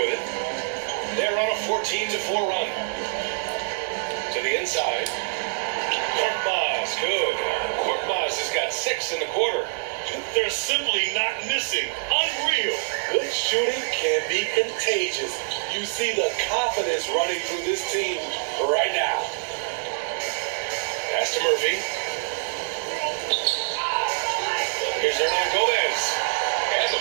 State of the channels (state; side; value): silent; left; digital silence